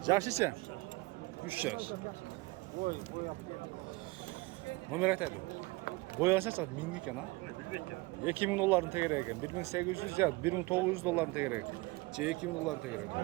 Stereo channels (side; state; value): left; quieter; 23.2 dB